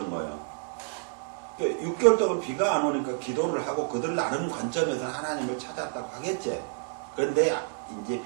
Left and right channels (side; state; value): left; silent; 59 dB below the other